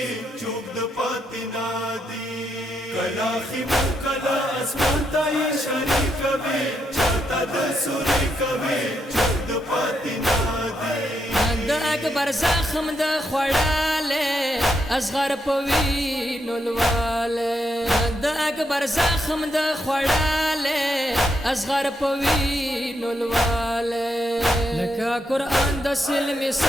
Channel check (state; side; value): normal; both; correlation 0.80